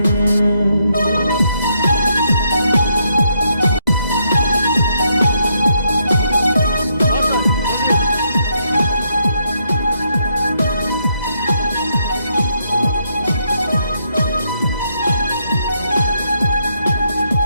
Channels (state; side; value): inverted; both; correlation -0.75